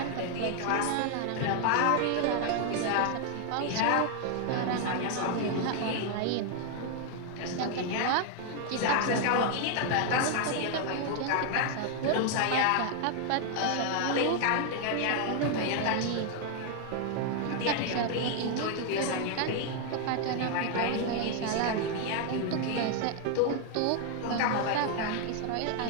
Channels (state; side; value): different; both; correlation 0.00